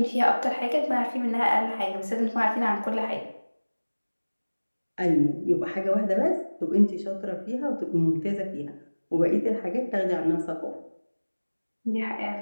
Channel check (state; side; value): inverted; both; correlation -1.00